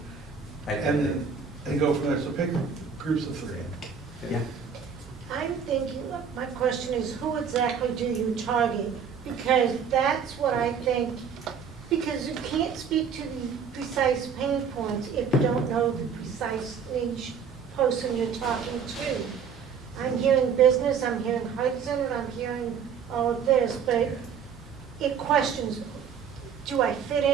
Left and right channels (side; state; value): left; quieter; 6.6 dB